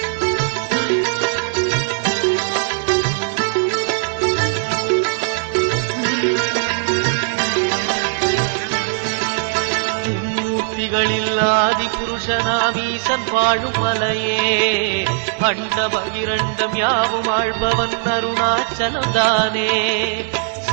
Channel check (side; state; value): left; silent; digital silence